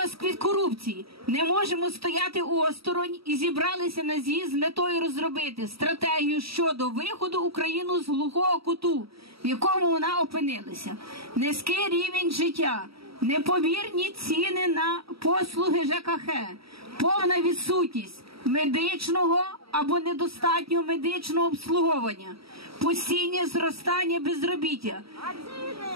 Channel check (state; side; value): late; left; 0.76 ms